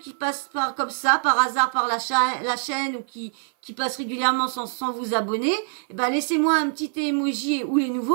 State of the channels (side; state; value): left; silent; 56 dB below the other